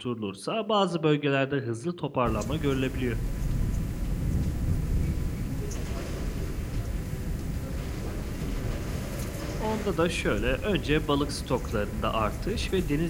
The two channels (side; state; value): both; identical; correlation 1.00